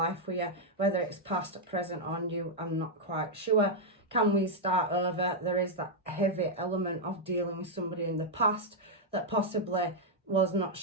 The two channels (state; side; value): normal; both; correlation -0.03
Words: with you, whether it's past, present or new, I'm not quite sure. Can we start over? There is that heavy element of dealing with somebody in the past that possibly was not